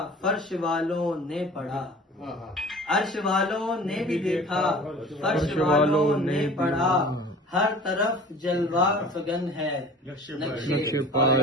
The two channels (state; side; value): normal; both; correlation 0.43